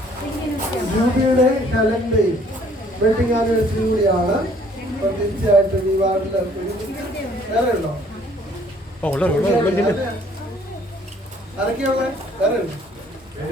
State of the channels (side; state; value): both; normal; correlation 0.59